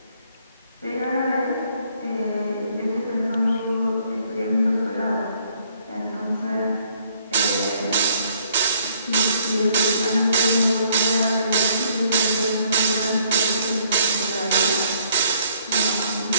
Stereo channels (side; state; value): both; inverted; correlation -0.65